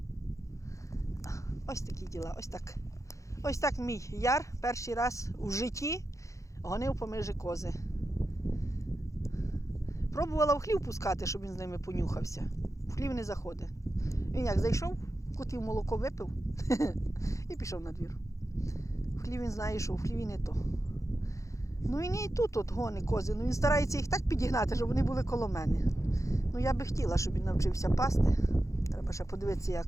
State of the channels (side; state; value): right; late; 0.15 ms